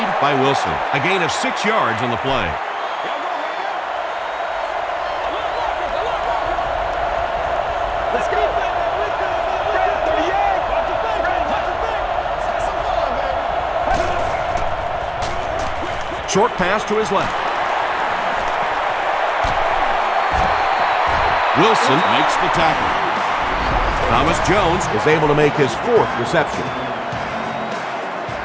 by Wilson. A gain of 6 yards on the play. Short pass to his left. Wilson makes the tackle. Thomas Jones is able to make his 4th reception.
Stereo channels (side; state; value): both; identical; correlation 1.00